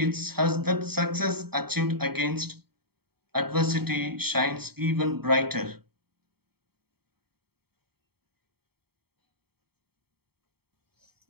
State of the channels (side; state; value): left; late; 0.96 ms